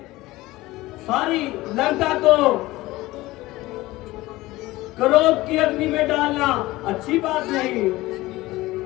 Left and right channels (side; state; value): right; quieter; 18.8 dB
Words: सारी लंका को क्रोध की अग्नि में डालना अच्छी बात नहीं।